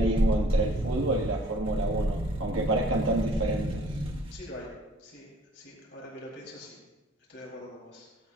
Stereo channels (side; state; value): both; normal; correlation 0.56